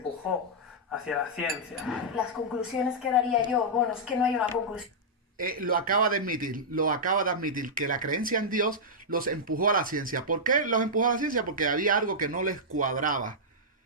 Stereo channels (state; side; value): normal; both; correlation -0.09